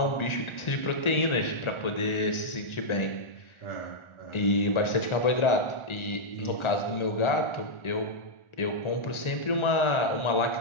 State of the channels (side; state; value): right; late; 1.4 ms